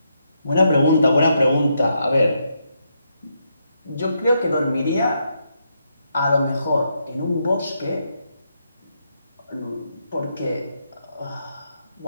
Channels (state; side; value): inverted; both; correlation -0.79